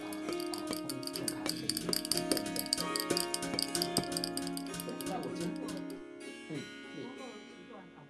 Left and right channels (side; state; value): both; identical; correlation 1.00